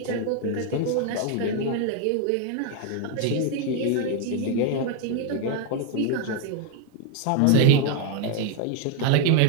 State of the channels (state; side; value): different; both; correlation 0.01